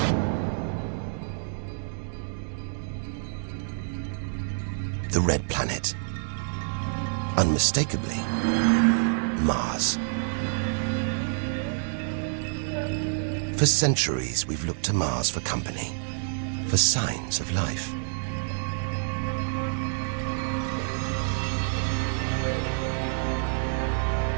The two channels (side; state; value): left; silent; digital silence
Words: The red planet. Unmistakably, Mars. For centuries, we've looked to Mars for company, for signs of life.